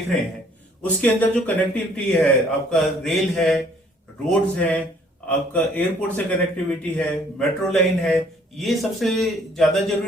रहे हैं, उसके अंदर जो कनेक्टिविटी है, आपका रेल है, रोड्स हैं, आपका एयरपोर्ट से कनेक्टिविटी है, मेट्रो लाइन है, ये सबसे ज्यादा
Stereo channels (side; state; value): both; normal; correlation 0.60